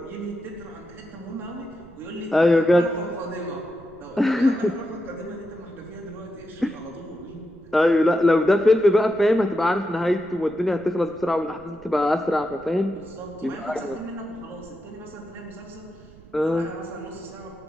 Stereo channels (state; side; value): noise; right; rumble, 23 dB below the sound